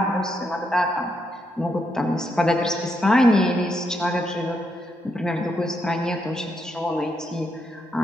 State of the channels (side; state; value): both; normal; correlation 0.80